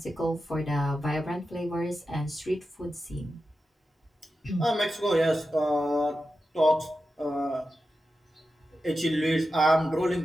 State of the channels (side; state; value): both; normal; correlation 0.91